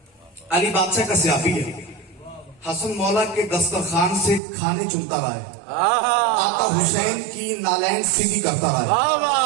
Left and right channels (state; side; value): drops out; left; at 4.4 s